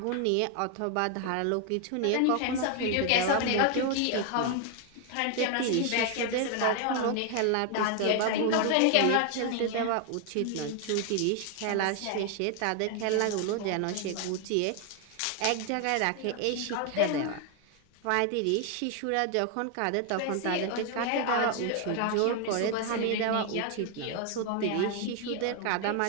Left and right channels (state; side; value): different; both; correlation 0.01